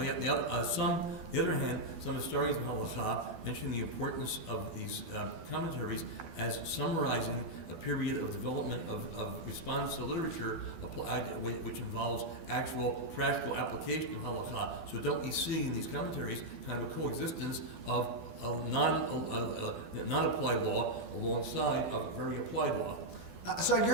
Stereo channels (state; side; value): late; left; 12 ms